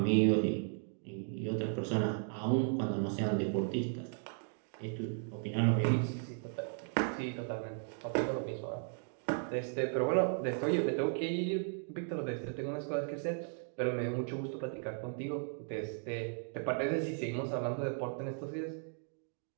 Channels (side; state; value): left; silent; 54 dB below the other